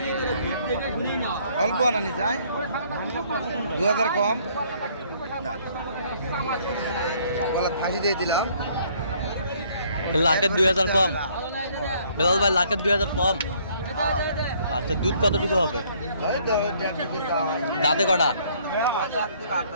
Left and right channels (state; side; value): inverted; both; correlation -0.62